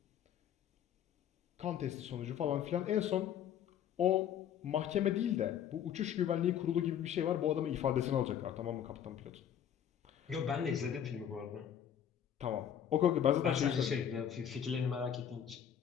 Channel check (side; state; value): right; quieter; 9.3 dB